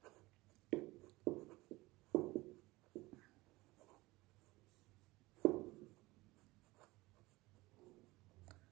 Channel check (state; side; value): quieter; left; 20.9 dB